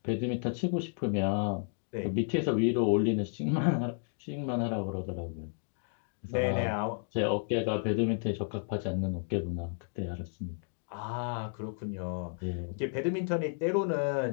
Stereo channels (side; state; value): right; silent; 56 dB below the other